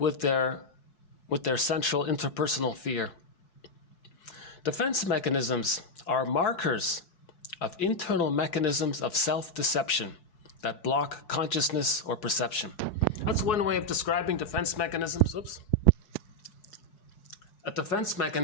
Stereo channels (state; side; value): late; right; 4.7 ms